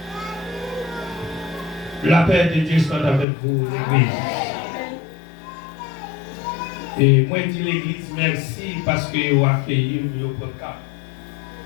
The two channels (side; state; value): right; drops out; at 3.2 s